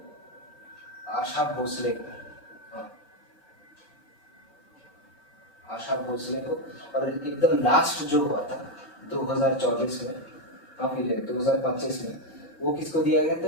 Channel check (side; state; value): right; late; 5.2 ms